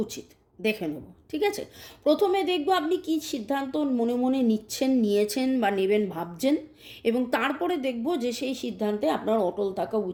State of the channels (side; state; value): both; identical; correlation 1.00